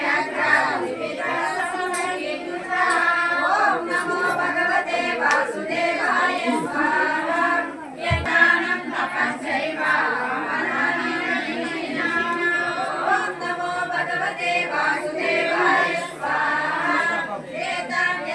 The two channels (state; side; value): identical; both; correlation 1.00